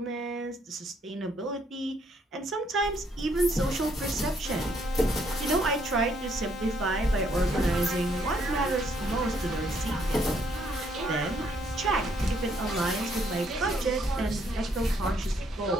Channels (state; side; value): normal; both; correlation 0.70